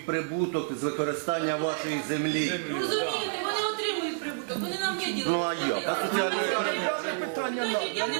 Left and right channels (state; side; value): silent; left; digital silence